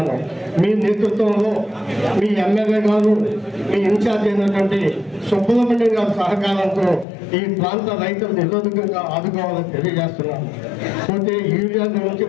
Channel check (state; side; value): drops out; right; at 7.1 s